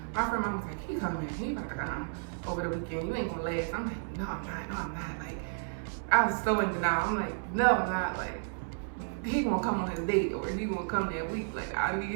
My friend mom was like, "He coming. He about to come over the weekend. You ain't gonna last." I'm like, "No, I'm not. No, I'm not." Like, I was so in denial. I'm like, "No, I'm not." Like, he gonna come on his date or he gonna come that week. Like, I need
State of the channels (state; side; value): silent; left; 56 dB below the other